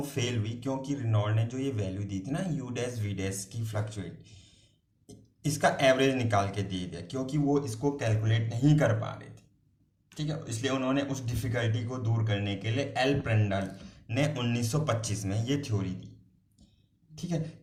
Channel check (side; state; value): both; identical; correlation 1.00